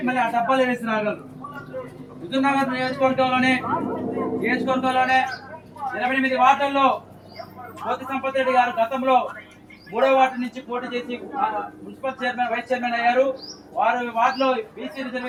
మళ్ళీ ఆ డబ్బాలు వేసి రాగలరు. హుజూర్నగర్ నియోజకవర్గంలోనే 28 వార్డుల్లో కోతి సంపత్ రెడ్డి గారు గతంలో 3వ వార్డు నుంచి పోటీ చేసి మున్సిపల్ చైర్మన్, వైస్ చైర్మన్ అయ్యారు. వార్డులో బీసీ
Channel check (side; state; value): both; identical; correlation 1.00